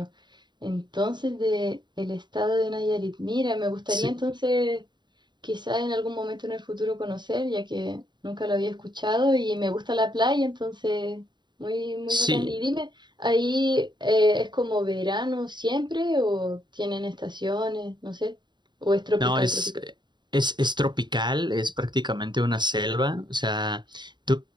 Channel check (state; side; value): late; left; 0.22 ms